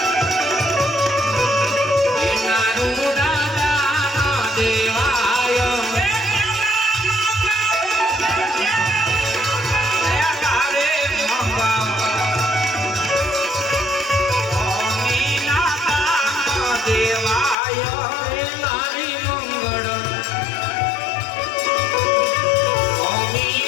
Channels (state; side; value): drops out; right; at 17.6 s